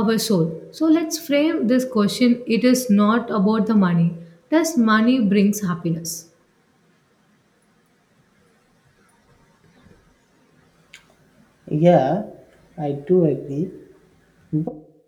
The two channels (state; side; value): identical; both; correlation 1.00